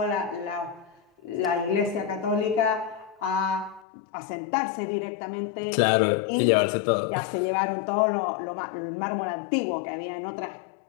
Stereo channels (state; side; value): drops out; right; at 3.9 s